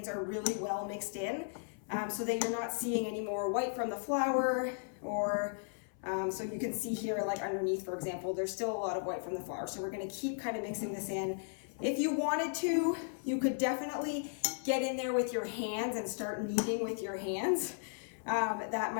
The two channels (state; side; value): silent; right; 54 dB below the other